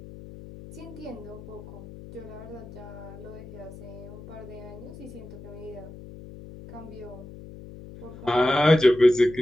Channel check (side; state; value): left; noise; hum, 15 dB below the sound